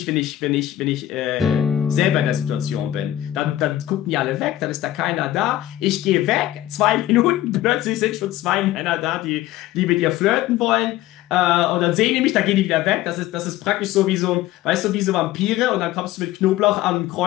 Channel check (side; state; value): right; quieter; 14.2 dB